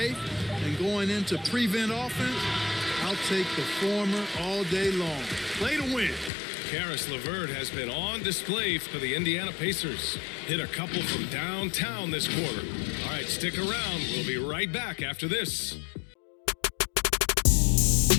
and going into prevent offense, I'll take the former all day long. Play to win. Caris LeVert has been on display for the Indiana Pacers. Hit a couple from downtown this quarter. All right, stick around. We'll be right back after this.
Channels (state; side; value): drops out; right; at 6.3 s